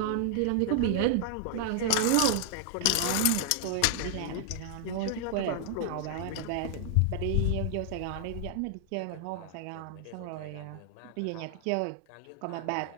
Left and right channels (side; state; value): both; different; correlation 0.00